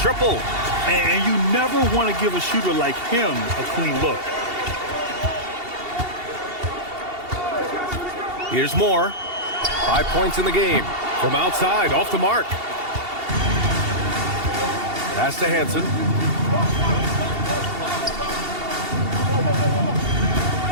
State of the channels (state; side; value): late; left; 2.7 ms